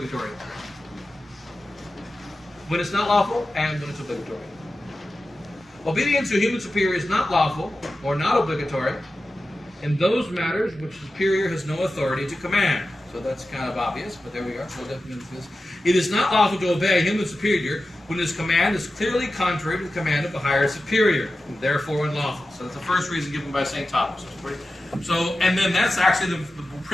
When it's not lawful and when it's obligatory. Obedience to a human superior is not lawful or not obligatory in those matters which the superior has no authority to command. So that's kind of obvious, but there we are. So that means this. It is not lawful to obey a human superior when his command is clearly contrary to the command of a higher superior, and therefore unlawful. So that's the first reason given by St. Thomas. So, and then that's actually the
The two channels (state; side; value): normal; both; correlation 0.93